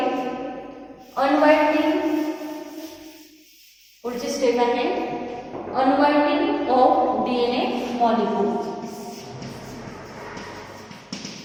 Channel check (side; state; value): both; identical; correlation 1.00